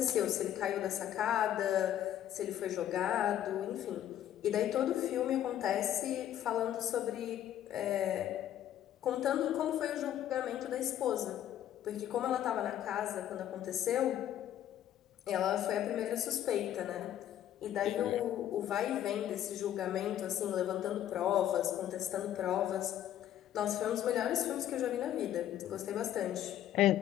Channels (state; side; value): quieter; right; 11.4 dB